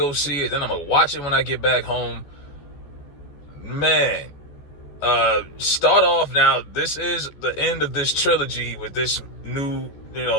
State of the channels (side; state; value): right; late; 14 ms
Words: see it. Then I'm going to watch it when I get back home. Man, start off now. This is the end of this trilogy with this new,